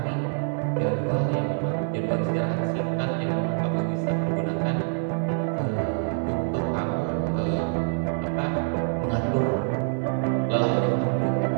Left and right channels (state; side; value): silent; left; digital silence